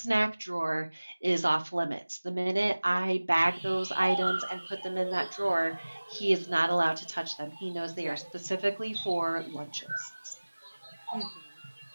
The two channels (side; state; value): both; inverted; correlation -1.00